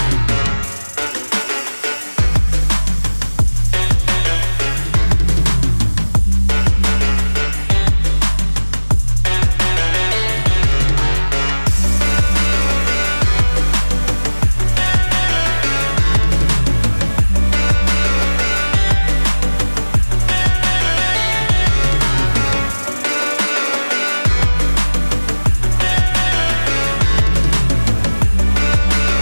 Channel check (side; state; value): both; inverted; correlation -1.00